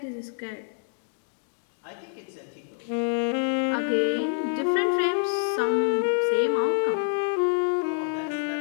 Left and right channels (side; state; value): right; silent; digital silence